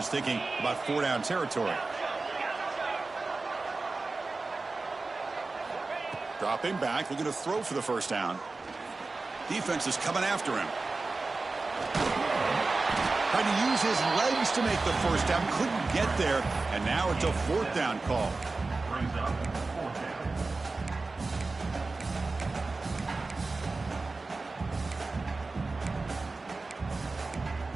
thinking about 4-down territory. Dropping back, looking to throw for the first down. Defense is coming after him. Trying to use his legs to make the first down. Couldn't get there. And now it's a 4th down call.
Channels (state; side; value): quieter; left; 3.6 dB